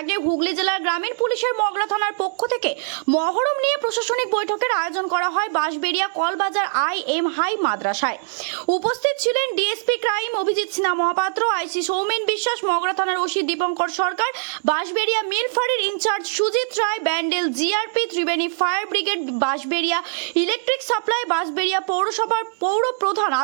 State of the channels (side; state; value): left; silent; digital silence